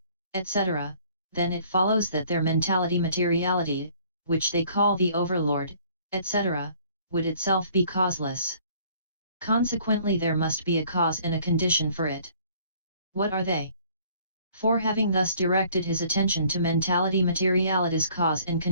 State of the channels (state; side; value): inverted; both; correlation -0.57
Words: etc., then it follows that their mentality-materiality, which they call the overlord, etc., would itself be causeless. Consequently there must be a cause and a condition for it. What are they? For having thus directed his attention to mentality-materiality's cause and